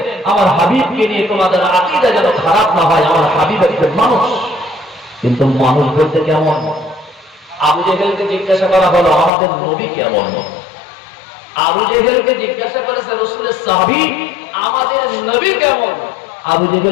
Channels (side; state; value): right; drops out; at 9.3 s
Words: আমার হাবিবকে নিয়ে তোমাদের আকীদা যেন খারাপ না হয়। আমার হাবিব একজন মানুষ, কিন্তু মানুষ বলতে কেমন? আবু জেহেলকে জিজ্ঞাসা করা হলো আমাদের নবী কেমন? আবু জেহেলকে জিজ্ঞাসা করেছে রাসূলের সাহাবী আমাদের নবী কেমন? আবু